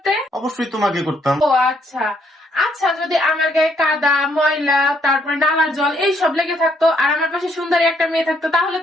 অবশ্যই তোমাকে করতাম। ও আচ্ছা। আচ্ছা, যদি আমার গায়ে কাদা, ময়লা, তারপরে নালার জল এইসব লেগে থাকতো আর আমার পাশে সুন্দরী একটা মেয়ে থাকতো, তাহলে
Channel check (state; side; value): normal; both; correlation 0.70